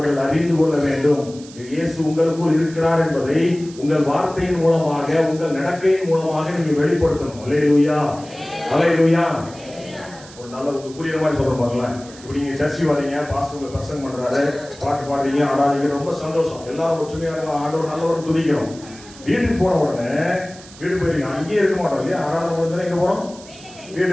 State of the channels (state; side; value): noise; right; hiss, 20 dB below the sound